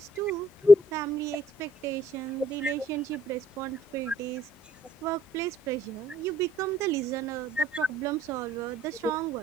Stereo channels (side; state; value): both; normal; correlation 0.66